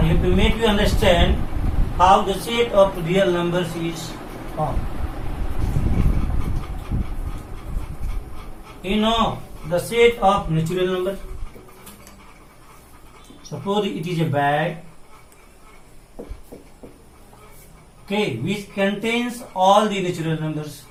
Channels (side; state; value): both; identical; correlation 1.00